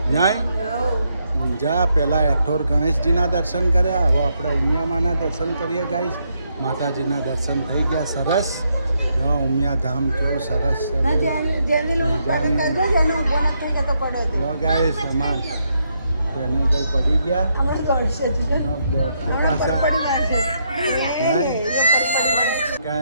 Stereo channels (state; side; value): inverted; both; correlation -0.77